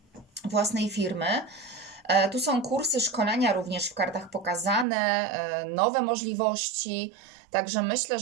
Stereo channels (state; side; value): drops out; left; at 4.9 s